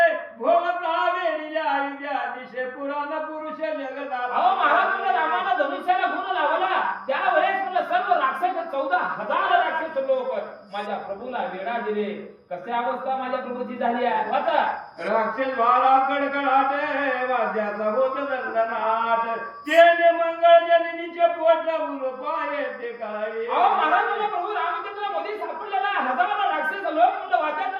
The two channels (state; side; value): identical; both; correlation 1.00